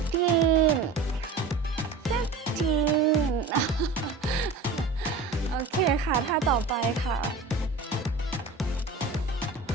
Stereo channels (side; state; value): left; quieter; 4.0 dB